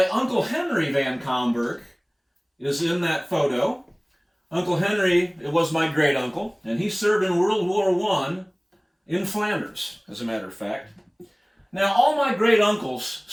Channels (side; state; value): both; identical; correlation 1.00